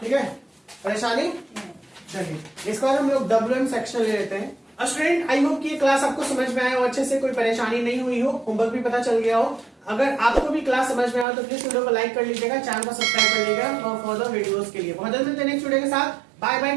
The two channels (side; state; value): left; drops out; at 11.2 s